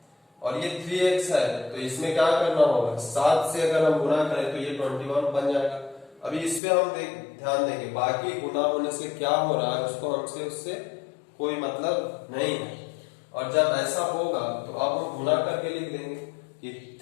और ये 3X है तो इसमें क्या करना होगा? 7 से अगर हम गुणा करें तो ये 21 बन जाएगा। अभी इस पे हम ध्यान देंगे, बाकी गुणा होने से क्या हो रहा है उसको हमसे उससे कोई मतलब नहीं है। और जब ऐसा होगा तो अब हम गुणा करके लिख देंगे कि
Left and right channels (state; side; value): drops out; right; at 6.6 s